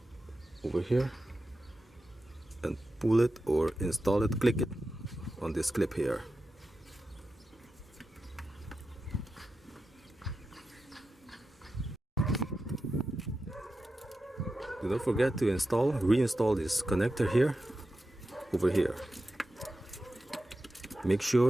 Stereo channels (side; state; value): both; normal; correlation 0.91